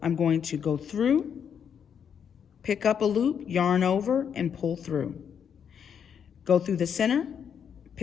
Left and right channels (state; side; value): quieter; right; 7.7 dB